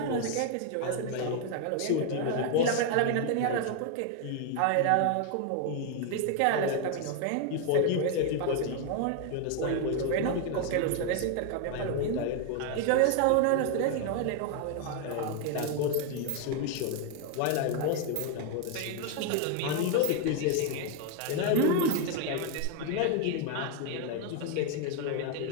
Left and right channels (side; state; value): both; different; correlation 0.00